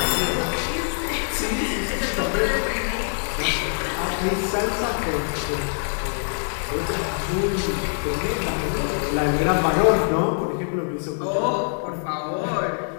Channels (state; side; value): silent; right; 55 dB below the other